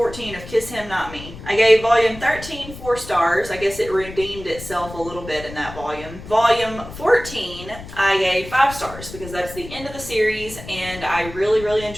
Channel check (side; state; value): left; noise; rumble, 14 dB below the sound